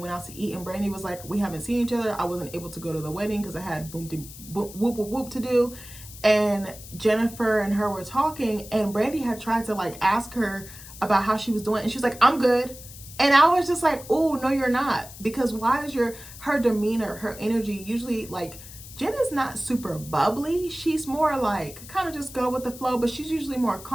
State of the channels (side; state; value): left; noise; hiss, 16 dB below the sound